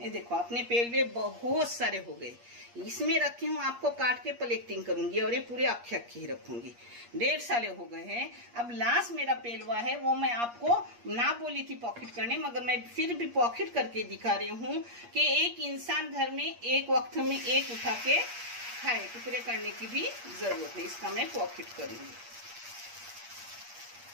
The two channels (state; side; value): late; left; 8.5 ms